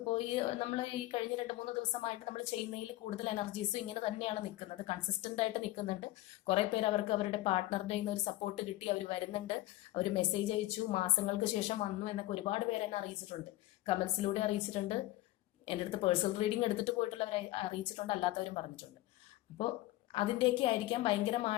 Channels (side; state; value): right; quieter; 17.1 dB